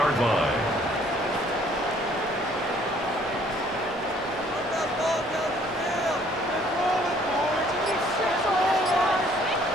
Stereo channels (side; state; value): both; normal; correlation 0.60